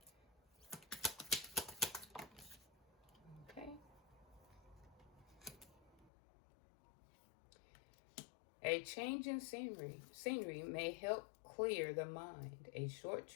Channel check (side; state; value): right; drops out; at 6.1 s